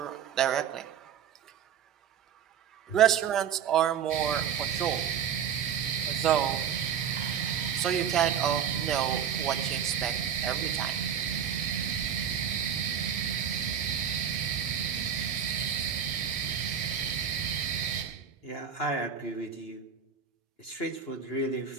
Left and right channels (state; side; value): quieter; left; 8.2 dB